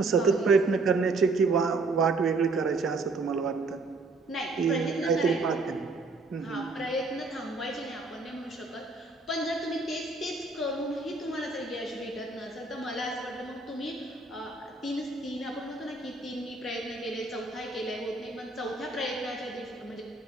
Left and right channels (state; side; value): quieter; left; 3.5 dB